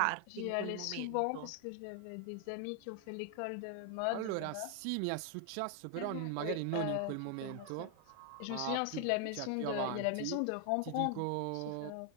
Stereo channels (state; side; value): different; both; correlation 0.00